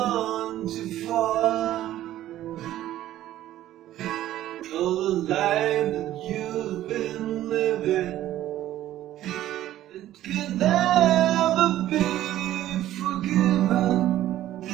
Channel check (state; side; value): quieter; left; 13.4 dB